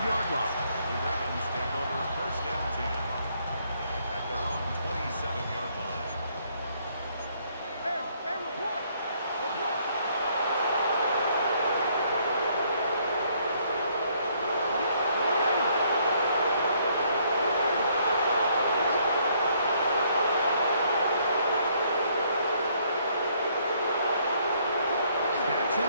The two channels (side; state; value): both; inverted; correlation -0.67